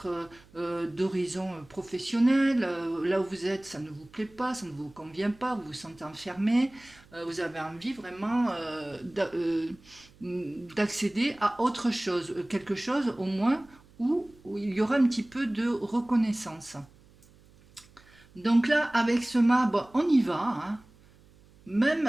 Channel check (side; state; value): right; noise; hum, 27 dB below the sound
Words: d'horizon professionnel. Là où vous êtes, ça ne vous plaît pas, ça ne vous convient pas, vous vous sentez enfermé. Vous avez envie vraiment d'accéder à autre chose, quelque chose au moins où il y aura un petit peu de reconnaissance. Donc là, avec ce mât, bon, on y va. Hein. Même,